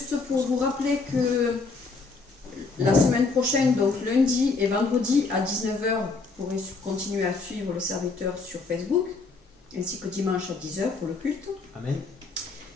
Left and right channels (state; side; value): quieter; right; 4.2 dB